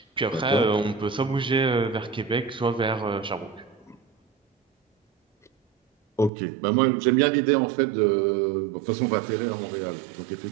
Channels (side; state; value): left; drops out; at 6.3 s